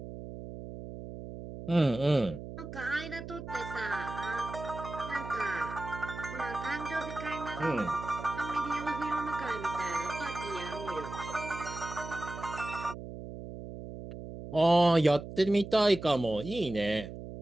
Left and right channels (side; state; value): right; noise; hum, 10 dB below the sound